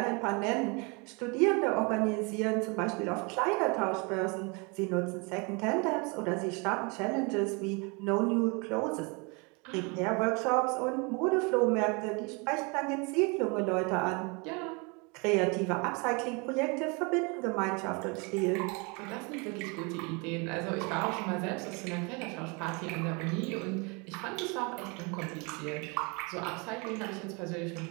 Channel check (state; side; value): quieter; left; 30.7 dB